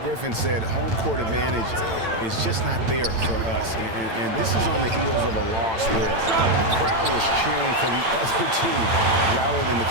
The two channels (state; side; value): late; left; 8.9 ms